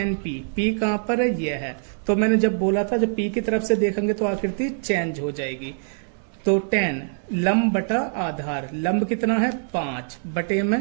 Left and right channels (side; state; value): left; silent; digital silence